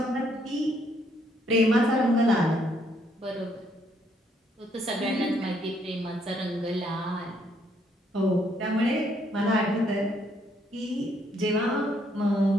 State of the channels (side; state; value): both; normal; correlation 0.70